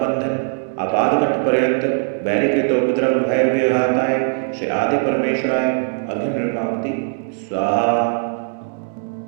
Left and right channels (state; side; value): silent; left; digital silence